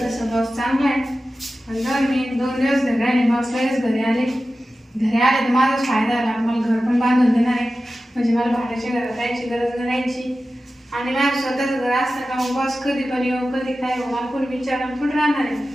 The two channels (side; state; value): both; normal; correlation 0.94